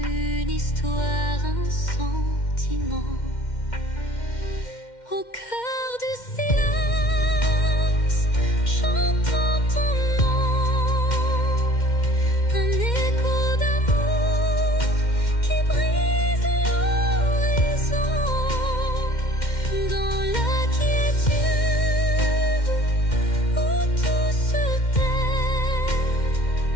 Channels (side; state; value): right; late; 2.1 ms